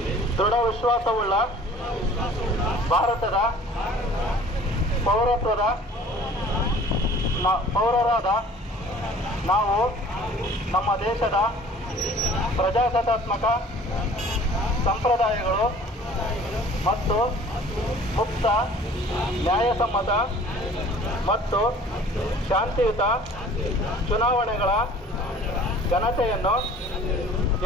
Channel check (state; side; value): normal; both; correlation 0.50